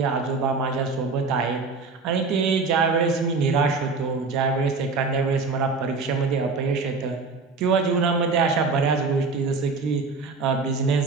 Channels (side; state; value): left; quieter; 4.3 dB